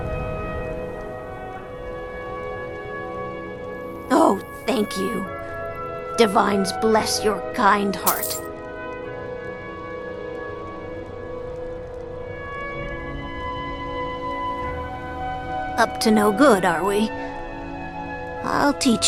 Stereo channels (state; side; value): identical; both; correlation 1.00